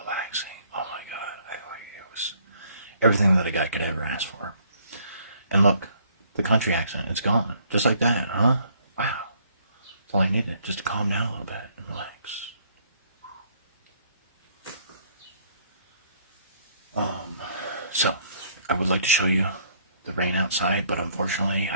relaxing. Oh my God. It was everything that a guy could ever ask for. And look, the country accent, it's gone. Just like that, huh? Wow. That's all I needed, just to calm down a little bit and relax. So, I would like to show you the rain outside, but unfortunately,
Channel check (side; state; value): both; inverted; correlation -0.64